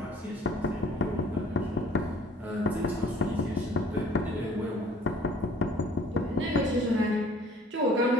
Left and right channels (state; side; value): normal; both; correlation 0.54